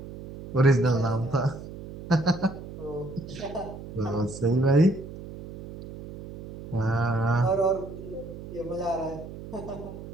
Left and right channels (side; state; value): right; noise; hum, 13 dB below the sound